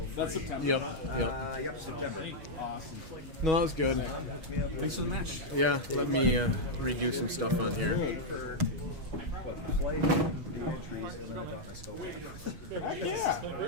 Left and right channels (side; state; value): left; late; 6.3 ms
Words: That's September. Yep. Yep. Yep, September. Awesome. No, that was good. Thanks for the match. Yeah, let me redo some stuff on here. Heck yeah.